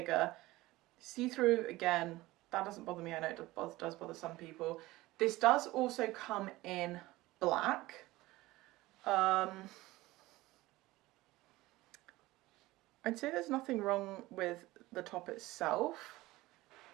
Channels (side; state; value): left; quieter; 18.7 dB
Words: See-through, again, that doesn't bother me. I know it does bother some people. This does also come in black. I'd say there's nothing wrong with the top itself.